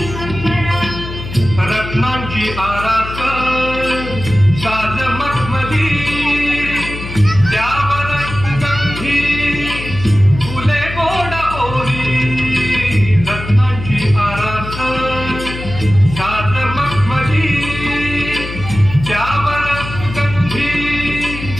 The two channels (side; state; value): left; noise; hum, 9 dB below the sound